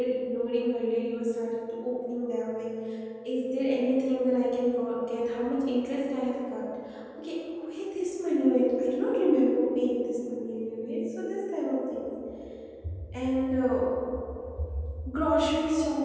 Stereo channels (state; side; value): identical; both; correlation 1.00